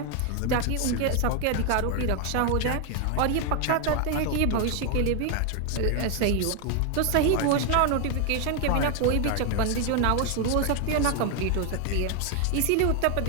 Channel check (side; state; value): both; different; correlation 0.01